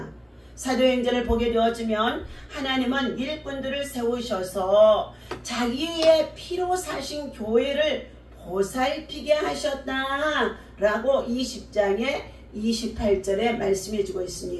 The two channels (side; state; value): both; identical; correlation 1.00